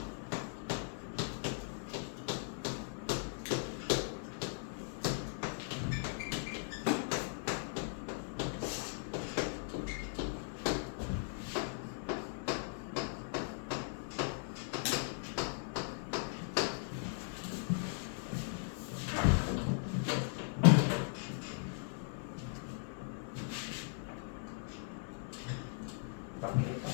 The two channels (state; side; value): silent; right; digital silence